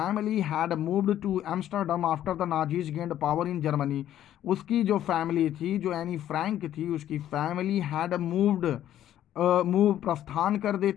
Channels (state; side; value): quieter; right; 11.8 dB